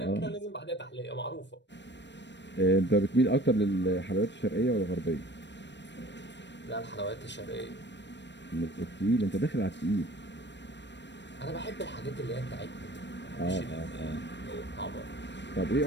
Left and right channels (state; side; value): late; right; 0.52 ms